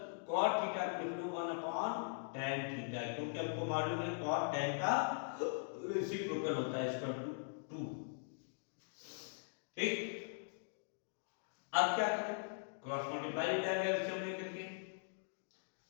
cot theta को लिख लो 1/tan थीटा, क्योंकि हमको मालूम है cot tan का रेसिप्रोकल होता है इसका 2। ठीक, अब क्या करें, क्रॉस मल्टीप्लाई हो जाएगा एलसीएम लेकर के।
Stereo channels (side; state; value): right; silent; digital silence